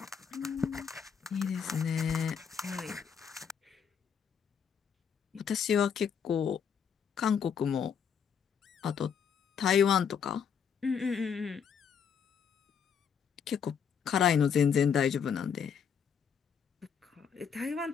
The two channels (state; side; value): quieter; right; 7.2 dB